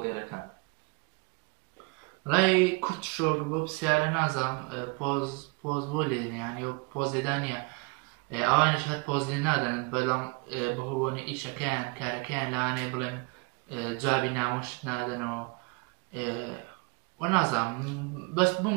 ڕای کورت شۆک بۆ پرسیارە نازانم پۆز بۆ لێنیانی و پۆز لێدانە ئەوانش هەر پۆز لێ نادەن بەڵام بەهۆبوونی ئیشەکەیان کارەکەیان لەوانەیە بڵێن جوابی نامۆشت نادەنەوە وەنازانم بەس بم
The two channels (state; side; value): quieter; left; 30.1 dB